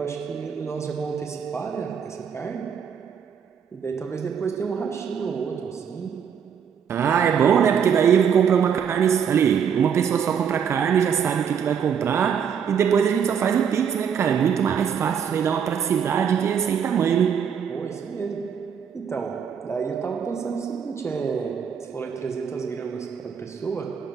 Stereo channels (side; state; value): left; quieter; 7.5 dB